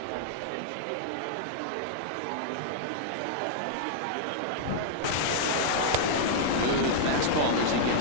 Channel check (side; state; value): both; different; correlation -0.01